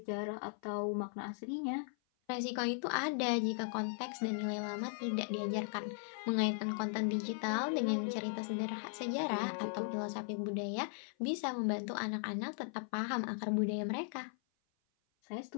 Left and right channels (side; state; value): right; silent; 53 dB below the other